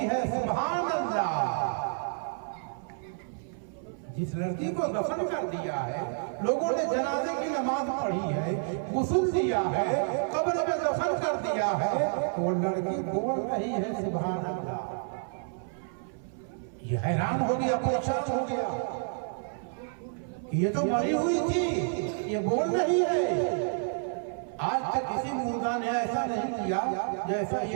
है सुभान अल्लाह। जिस लड़की को दफन कर दिया है, लोगों ने जनाजे की नमाज पढ़ी है, गुस्ल दिया है, कब्र में दफन कर दिया है, वो लड़की बोल रही है सुभान अल्लाह। ये हैरान हो गया, परेशान हो गया, ये तो मरी हुई थी, ये बोल रही है। आज तक किसी मुर्दा ने ऐसा नहीं किया जैसा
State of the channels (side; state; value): left; silent; 58 dB below the other